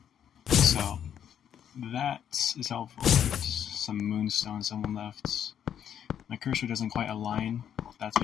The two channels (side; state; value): right; quieter; 9.2 dB